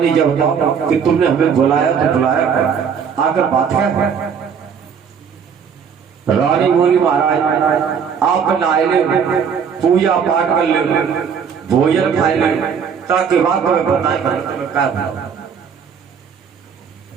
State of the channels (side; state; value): left; quieter; 6.9 dB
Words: जब बताओ कि तुमने हमें बुलाया तो बुलाया आकर बात है। रानी बोली महाराज आप नहाए ले, पूजा पाठ कर ले, भोजन खाए ले, ताकि बात तुम्हें बताए क्या।